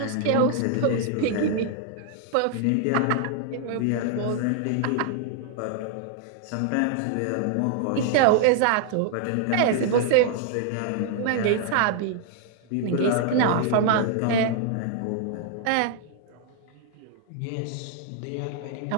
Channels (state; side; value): different; both; correlation 0.00